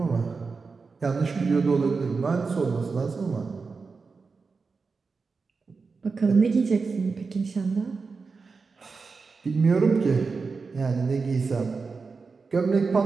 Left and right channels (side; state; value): left; quieter; 4.6 dB